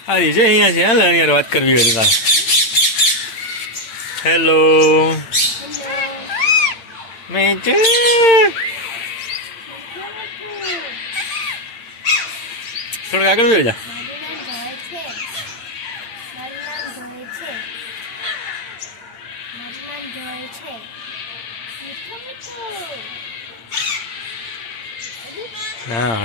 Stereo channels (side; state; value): right; late; 8.9 ms